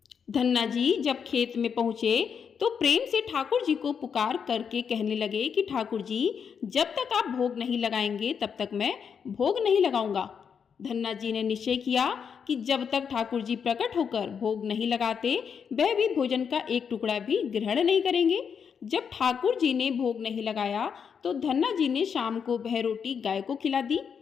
धन्ना जी जब खेत में पहुंचे तो प्रेम से ठाकुर जी को पुकार करके कहने लगे कि ठाकुर जी, जब तक आप भोग नहीं लगाएंगे तब तक मैं भोग नहीं लगाऊंगा। धन्ना जी ने निश्चय किया कि जब तक ठाकुर जी प्रकट होकर भोग नहीं लगाते वह भी भोजन का एक टुकड़ा भी ग्रहण नहीं करेंगे। जब ठाकुर जी ने भोग नहीं लगाया तो धन्ना जी ने शाम को वह रोटी गाय को खिला दी।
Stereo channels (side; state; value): right; quieter; 6.9 dB